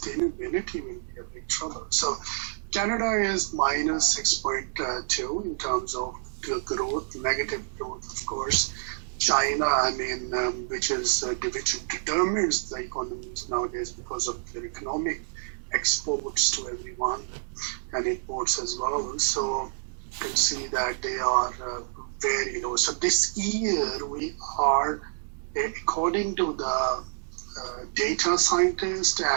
will be a big trouble. So Canada is minus 6.2 in terms of growth, negative growth, of course. China, which determines the economies nowadays because of their economic exports to everyone and imports as well. So you can see that they are very low. So this year we are, according to the data scientists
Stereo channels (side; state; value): left; silent; digital silence